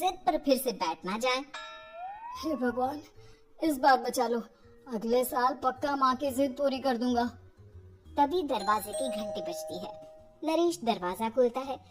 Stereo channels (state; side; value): identical; both; correlation 1.00